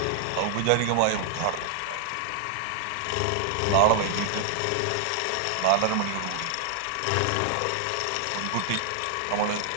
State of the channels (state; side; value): different; both; correlation 0.00